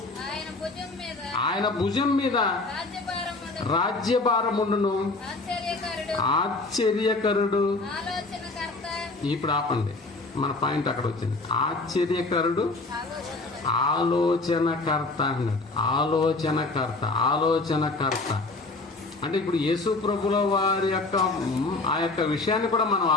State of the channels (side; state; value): right; quieter; 3.3 dB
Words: ఆయన భుజం మీద రాజ్యభారముండును, ఆశ్చర్యకరుడు. ఇప్పుడు ఆపండి, మన పాయింట్ అక్కడ వచ్చింది. ఆశ్చర్యకరుడు, ఆలోచనకర్త అన్నాడు. ఆలోచనకర్త అంటే ఇప్పుడు యేసు ప్రభుల వారి యొక్క ఆ యొక్క విషయాన్ని కూడా మనం